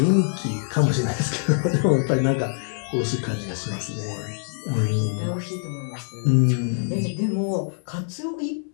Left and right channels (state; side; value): silent; right; digital silence